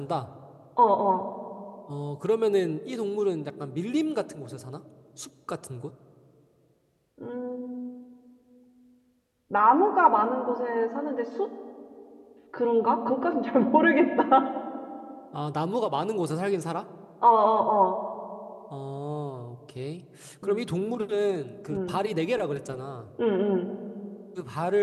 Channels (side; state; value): both; identical; correlation 1.00